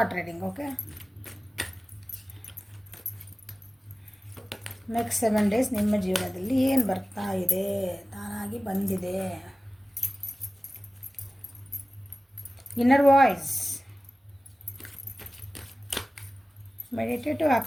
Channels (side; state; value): both; normal; correlation 0.96